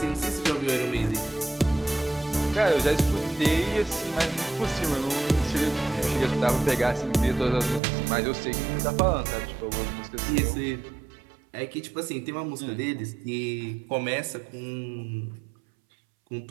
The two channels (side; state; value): left; drops out; at 7.8 s